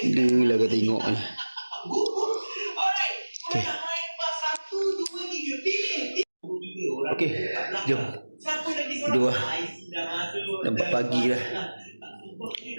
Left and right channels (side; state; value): both; inverted; correlation -1.00